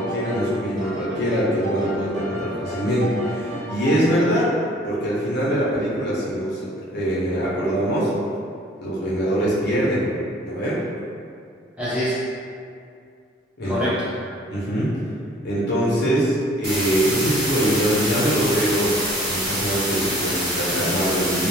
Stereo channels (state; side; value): normal; both; correlation 0.54